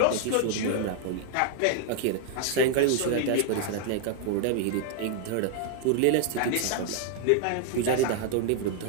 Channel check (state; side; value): different; both; correlation 0.00